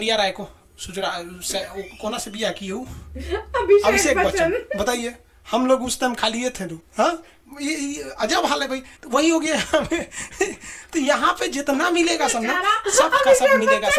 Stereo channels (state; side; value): identical; both; correlation 1.00